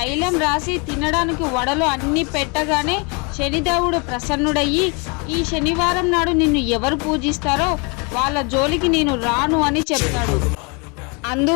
రాసి తినడానికి వడలు అన్నీ పెట్టగానే శనిదేవుడు ప్రసన్నుడయ్యి ఈ శనివారం నాడు నిన్ను ఎవరు పూజిస్తారో వాళ్ళ జోలికి నేను రాను అని చెప్తాడు.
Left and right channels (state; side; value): quieter; right; 31.9 dB